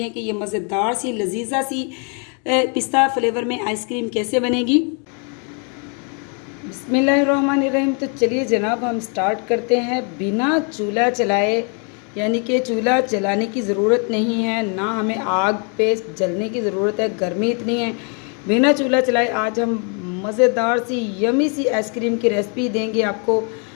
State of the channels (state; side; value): quieter; right; 38.3 dB